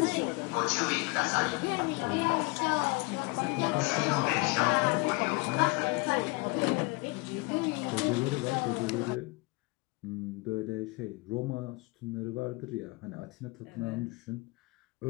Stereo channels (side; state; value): right; quieter; 26.6 dB